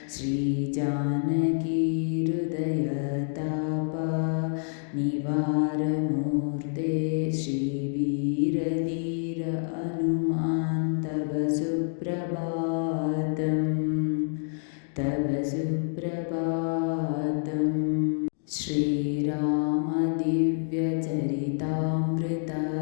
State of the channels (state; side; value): silent; right; digital silence